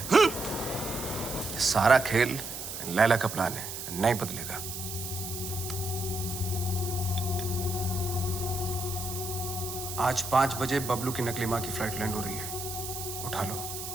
सारा खेल लैला का प्लान है, नहीं बदलेगा। आज 5 बजे बबलू की नकली माँ की फ्लाइट लैंड हो रही है, उठा लो।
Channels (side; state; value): right; noise; hiss, 7 dB below the sound